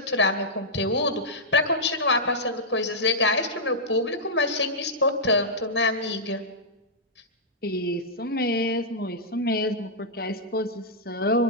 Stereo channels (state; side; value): normal; both; correlation -0.10